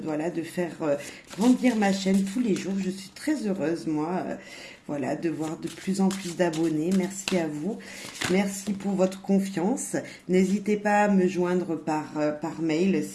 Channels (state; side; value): identical; both; correlation 1.00